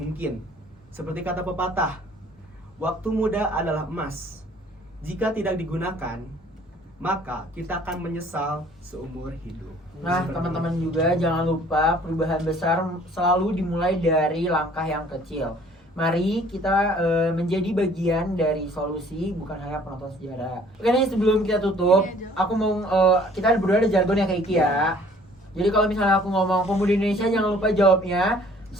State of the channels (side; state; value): both; normal; correlation 0.55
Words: Seperti kata pepatah, waktu muda adalah emas. Jika tidak digunakan, maka kita akan menyesal seumur hidup. Nah, teman-teman juga jangan lupa perubahan besar selalu dimulai dari langkah yang kecil. Mari kita menjadi bagian dari solusi, bukan hanya penonton sejarah. Oke nih, sebelum kita tutup, aku mau kita berdua ada jargon yang kayak Iki ya. Jadi kalau misalnya aku ngomong pemuda Indonesia, jangan lupa jawabnya